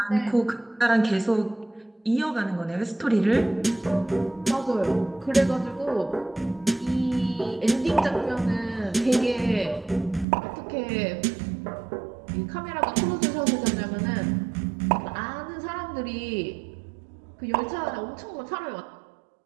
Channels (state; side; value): drops out; left; at 10.2 s